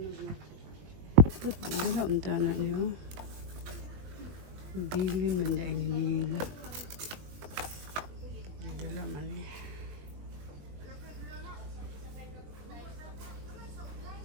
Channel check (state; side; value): late; left; 21 ms